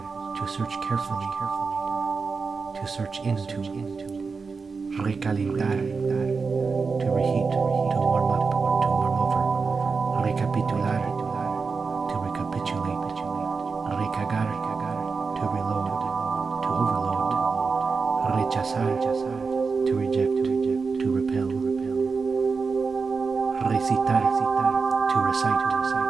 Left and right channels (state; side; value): quieter; left; 4.8 dB